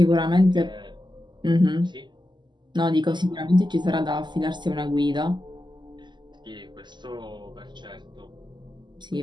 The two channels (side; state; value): left; late; 0.21 ms